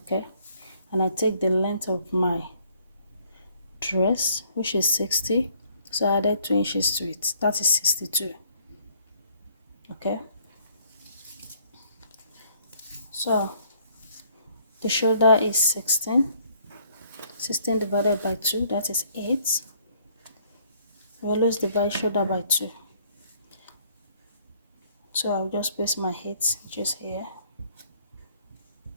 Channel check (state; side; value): inverted; both; correlation -0.63